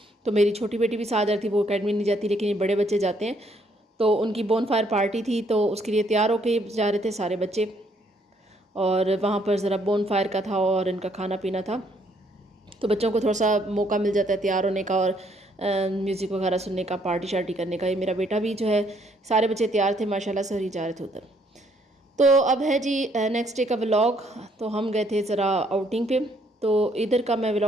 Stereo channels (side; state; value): both; normal; correlation 0.68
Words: तो मेरी छोटी बेटी भी साथ जा रही थी। वो एकेडमी नहीं जाती लेकिन ये बड़े बच्चे जाते हैं। तो उनकी बोन फायर पार्टी थी, तो उसके लिए तैयार होके जा रहे थे सारे बच्चे। और वहाँ पर ज़रा बोन फायर का था और इनका खाना पीना था। तो बच्चों को थोड़ा सा मौका मिल जाता है तैयार होने का और म्यूज़िक वगैरह सुनने का, पार्टी शार्टी करने का। ये मेरा बेटा भी जो है, सारे बच्चे तैयार थे माशाल्लाह से, ही जा रहे थे उधर। तो अब है जी नेक्स्ट डे का व्लॉग। तो हम गए थे ज़रा आउटिंग पे। तो इधर का मैं